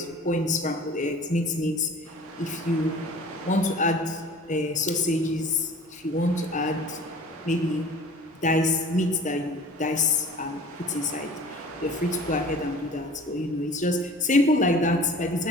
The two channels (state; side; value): normal; both; correlation 0.44